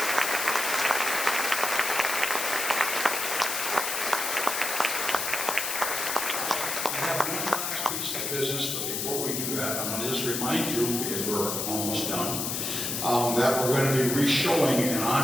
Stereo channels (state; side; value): noise; left; hiss, 2 dB below the sound